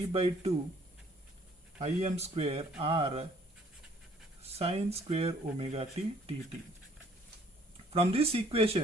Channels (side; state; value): both; normal; correlation 0.60